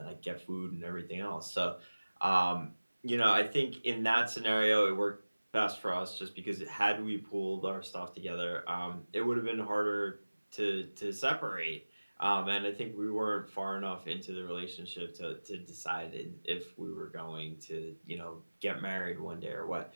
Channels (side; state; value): both; inverted; correlation -1.00